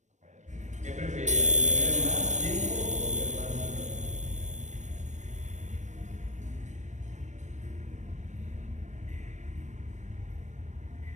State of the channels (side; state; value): left; late; 0.34 ms